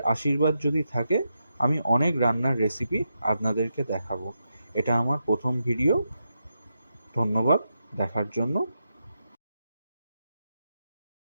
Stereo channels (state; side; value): inverted; both; correlation -0.86